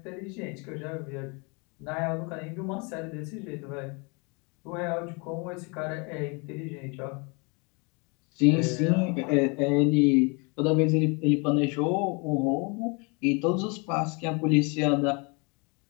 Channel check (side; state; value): right; quieter; 31.6 dB